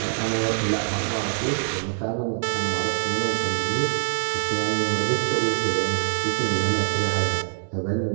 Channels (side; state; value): left; silent; digital silence